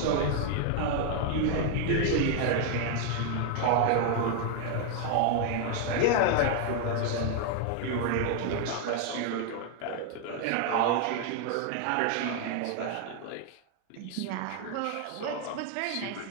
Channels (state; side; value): different; both; correlation 0.00